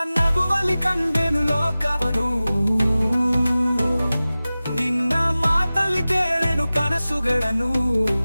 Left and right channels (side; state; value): both; inverted; correlation -0.97